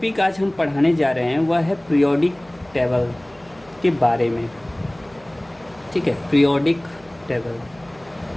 आज हम पढ़ाने जा रहे हैं वह है पीरियोडिक टेबल के बारे में। ठीक है, पीरियोडिक टेबल।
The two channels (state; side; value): noise; right; hum, 28 dB below the sound